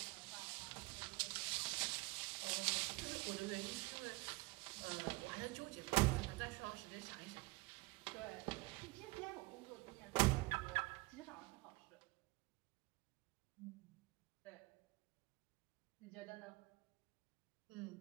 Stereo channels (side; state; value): left; quieter; 24.2 dB